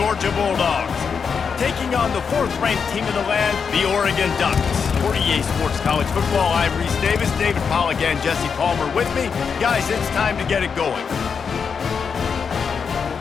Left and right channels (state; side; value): quieter; right; 6.1 dB